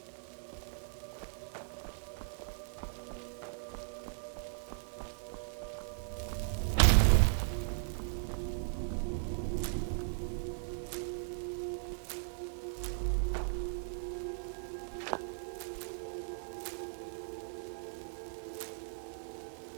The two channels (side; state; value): left; silent; 53 dB below the other